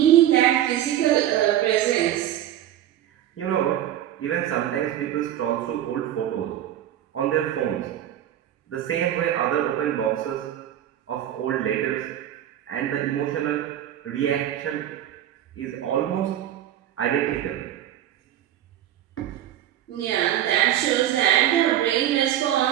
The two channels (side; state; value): left; quieter; 11.8 dB